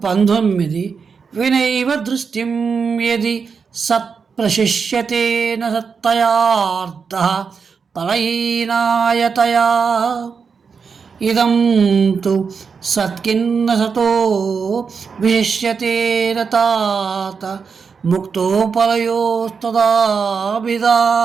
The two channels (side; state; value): left; quieter; 5.7 dB